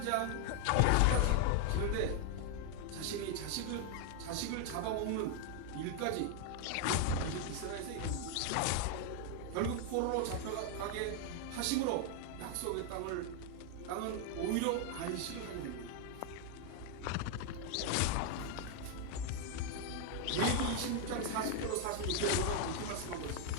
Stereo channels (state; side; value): different; both; correlation 0.00